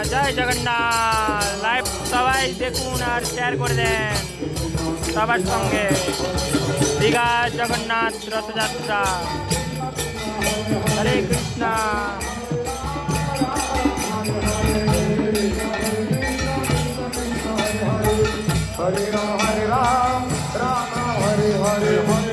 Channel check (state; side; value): identical; both; correlation 1.00